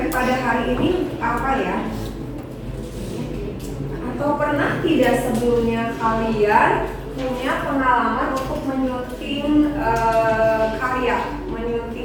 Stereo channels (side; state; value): both; identical; correlation 1.00